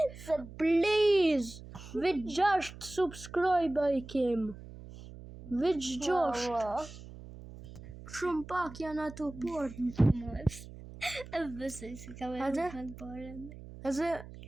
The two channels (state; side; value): noise; right; hum, 15 dB below the sound